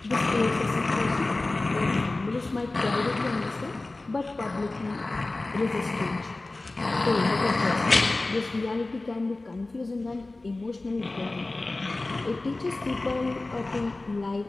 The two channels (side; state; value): right; quieter; 3.1 dB